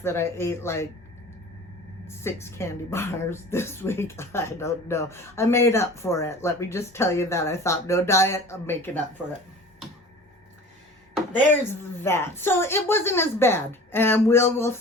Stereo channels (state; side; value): normal; both; correlation 0.41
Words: that I ate like 6 candy bars this week. I don't know. I made up for it. Let me just tell you that. I thought, no diet, I'm making up for it. There's that. So it wasn't as bad, and we'll